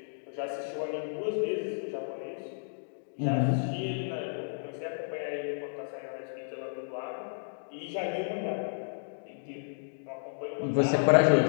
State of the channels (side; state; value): right; silent; digital silence